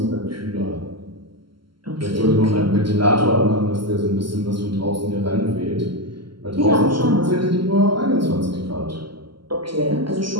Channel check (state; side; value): late; left; 0.73 ms